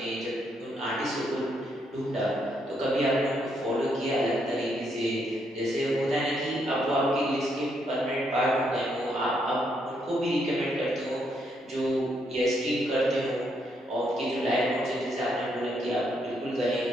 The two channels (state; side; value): normal; both; correlation 0.75